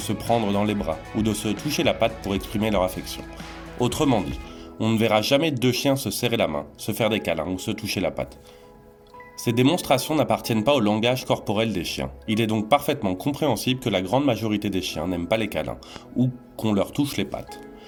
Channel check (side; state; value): both; identical; correlation 1.00